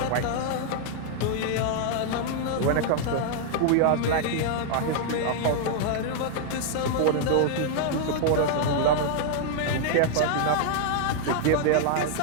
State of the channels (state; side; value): different; both; correlation 0.00